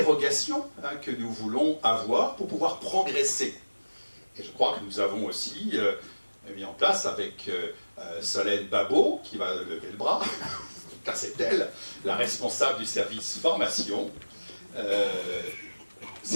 que nous voulons avoir pour pouvoir progresser. Et je crois que nous avons aussi mis en place avec Solène Babot, qui va lever le bras, car c'est elle la responsable du service formation.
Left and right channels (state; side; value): inverted; both; correlation -1.00